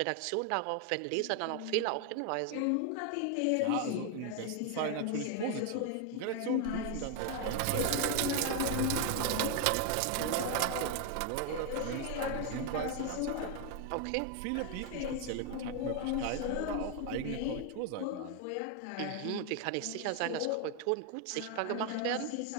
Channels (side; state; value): both; different; correlation 0.01